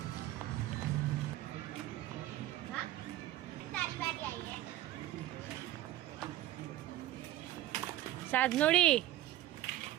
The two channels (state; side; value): quieter; left; 14.5 dB